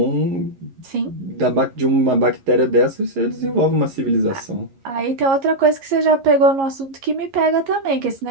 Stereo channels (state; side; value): late; left; 11 ms